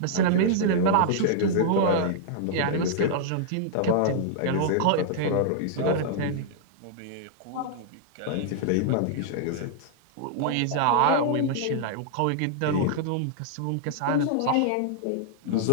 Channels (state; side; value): different; both; correlation -0.01